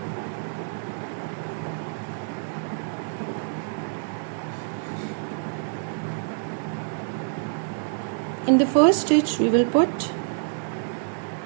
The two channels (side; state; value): left; silent; digital silence